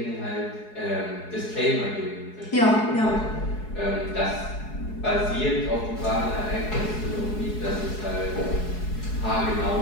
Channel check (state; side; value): late; right; 4.7 ms